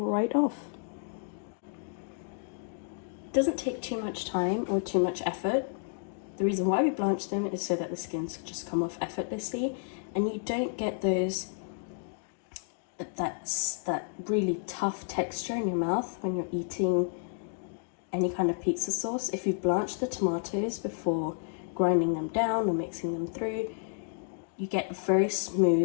off. It doesn't take too much time or too much effort. The reason why we blanch them is so that the skins just come off effortlessly and you don't get that really tough texture in your mouth when you're eating any kind of pizza sauce. If you blanch the tomatoes before grinding them down or mixing them through, you get a very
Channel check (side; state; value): right; silent; digital silence